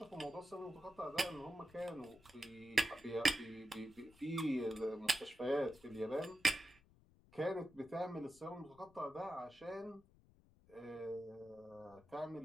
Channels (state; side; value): noise; left; rumble, 26 dB below the sound